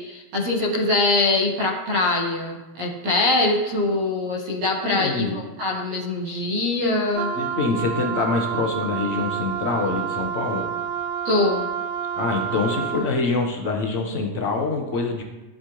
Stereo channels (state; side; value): late; left; 17 ms